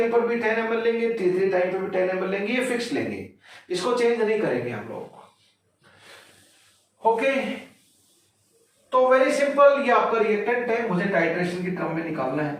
पर भी 10 ml लेंगे, T3 टाइम पर भी 10 ml लेंगे, ये फिक्स लेंगे, इसको चेंज नहीं करेंगे हम लोग। ओके, तो वेरी सिंपल, ये आपका रिएक्टेंट है, मुझे टाइट्रेशन की टर्म में निकालना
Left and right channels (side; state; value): both; identical; correlation 1.00